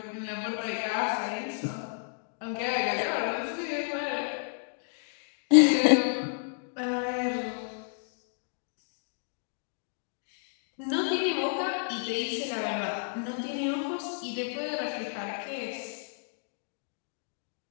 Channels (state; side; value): silent; right; digital silence